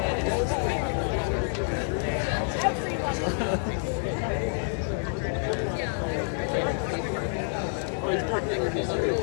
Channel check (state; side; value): silent; right; 59 dB below the other